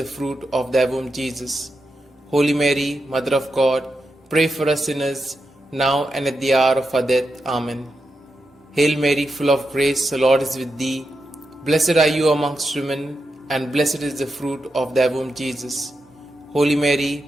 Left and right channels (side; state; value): both; normal; correlation 0.87